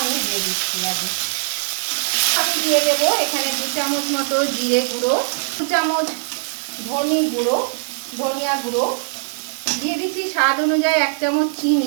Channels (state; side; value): silent; left; digital silence